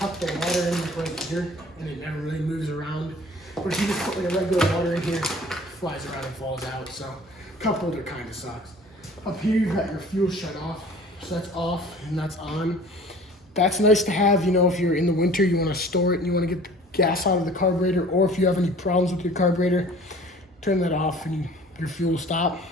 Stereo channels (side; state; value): both; normal; correlation 0.47